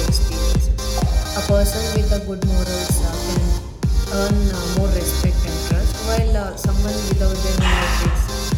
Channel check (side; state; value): both; identical; correlation 1.00